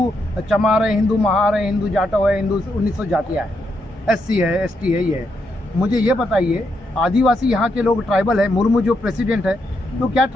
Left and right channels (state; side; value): normal; both; correlation 0.80